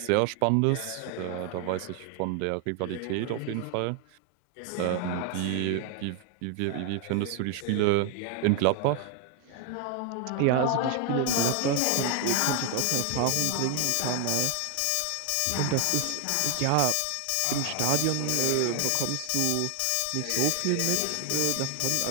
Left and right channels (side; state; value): both; different; correlation 0.01